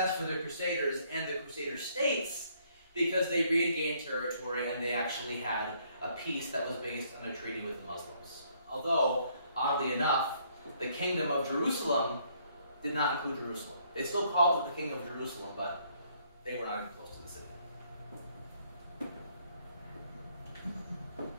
for the Crusaders and the Crusader states because they regained territory and they actually had a peace that was based on a treaty with the Muslims. Although, oddly enough, the kingdom of Jerusalem did not include Jerusalem. They still called it the kingdom of Jerusalem, but they were not even close to the city.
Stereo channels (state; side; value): inverted; both; correlation -0.67